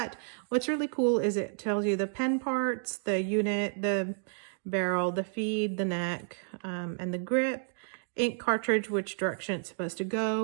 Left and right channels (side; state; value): left; silent; digital silence